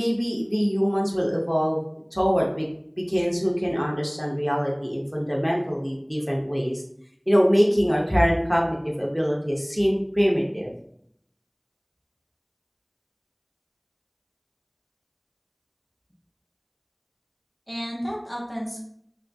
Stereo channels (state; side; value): identical; both; correlation 1.00